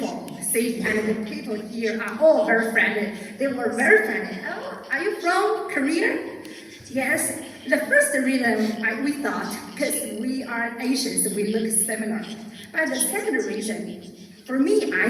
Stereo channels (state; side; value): identical; both; correlation 1.00